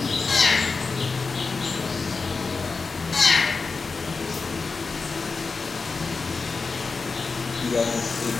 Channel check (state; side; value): quieter; right; 4.4 dB